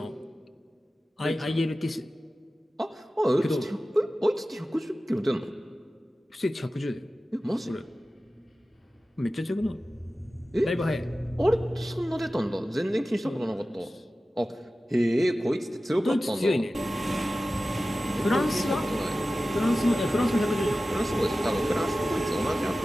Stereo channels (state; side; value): normal; both; correlation 0.95